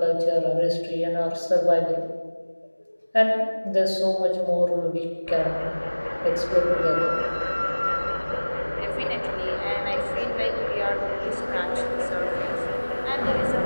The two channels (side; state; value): both; inverted; correlation -1.00